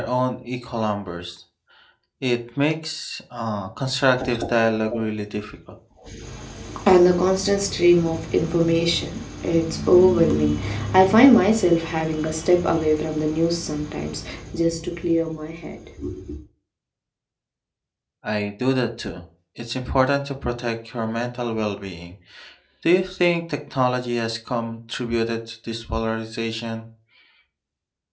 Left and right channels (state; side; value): identical; both; correlation 1.00